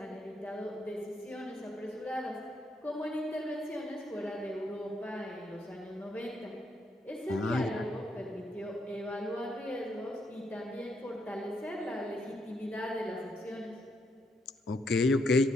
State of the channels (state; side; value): normal; both; correlation 0.76